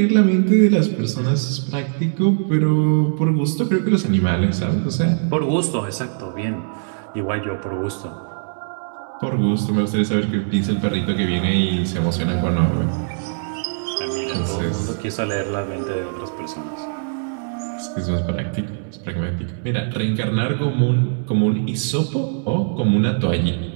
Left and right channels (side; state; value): left; silent; digital silence